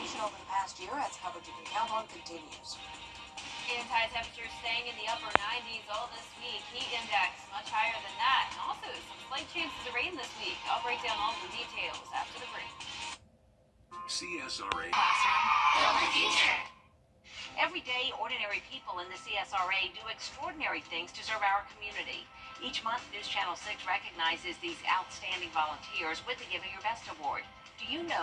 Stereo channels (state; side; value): identical; both; correlation 1.00